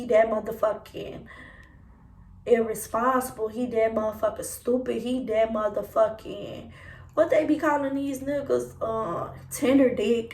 that motherfucking irresponsible. He that motherfucking stupid. He that motherfucking, what they be calling these niggas, tender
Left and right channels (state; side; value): identical; both; correlation 1.00